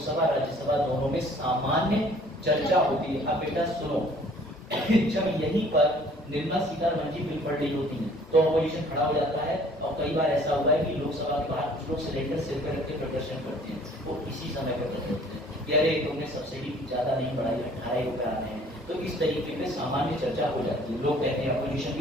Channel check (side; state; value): both; normal; correlation 0.55